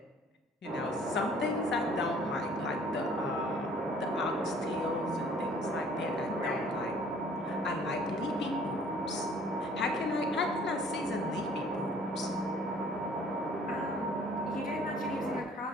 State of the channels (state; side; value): normal; both; correlation 0.55